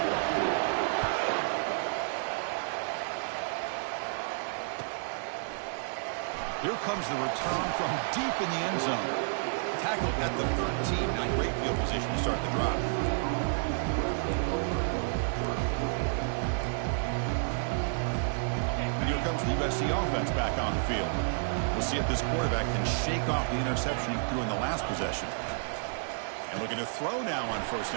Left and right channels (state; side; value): silent; left; digital silence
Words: Here comes the return from deep in the end zone. Tackled at the 13. Now great field position to start the drive. And here comes the USC offense back on the field. We'll see if this quarterback can shake off the interception he threw in the last possession. And looking to throw now on first